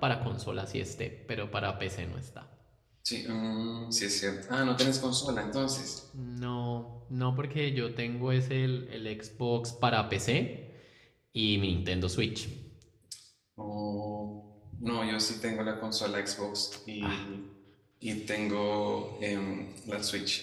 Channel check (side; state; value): both; identical; correlation 1.00